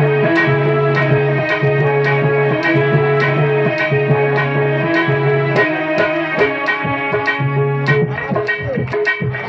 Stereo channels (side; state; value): both; identical; correlation 1.00